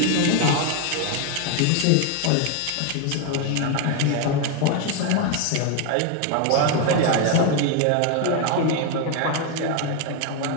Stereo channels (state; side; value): different; both; correlation 0.01